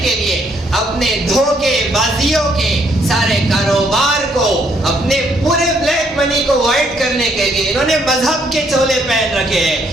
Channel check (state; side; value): normal; both; correlation 0.70